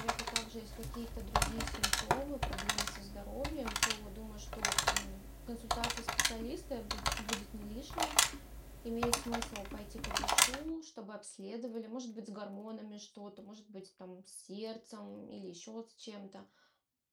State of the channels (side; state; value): both; identical; correlation 1.00